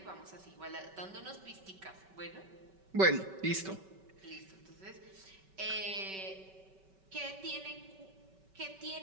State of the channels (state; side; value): late; left; 5.2 ms